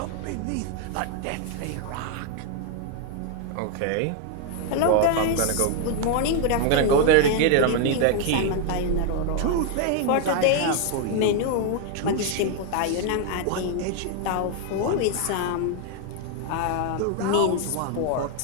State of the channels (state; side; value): different; both; correlation 0.00